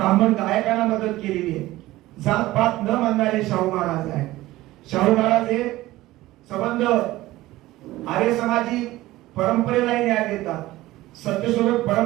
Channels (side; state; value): left; quieter; 17.2 dB